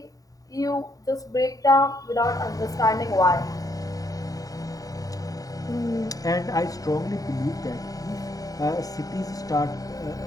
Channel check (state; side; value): late; right; 0.17 ms